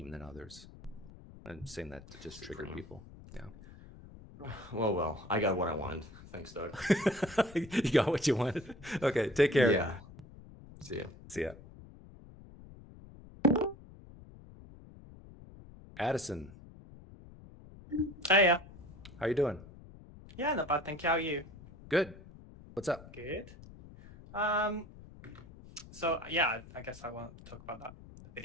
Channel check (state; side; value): noise; left; rumble, 18 dB below the sound